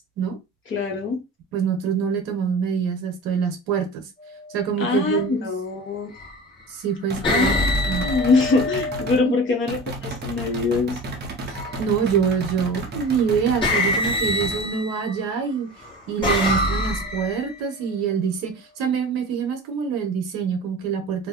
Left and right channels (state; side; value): normal; both; correlation 0.36